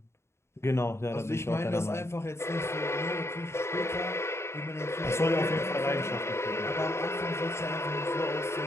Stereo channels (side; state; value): right; late; 0.13 ms